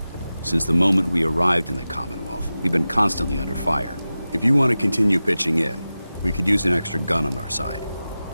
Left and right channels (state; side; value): inverted; both; correlation -0.95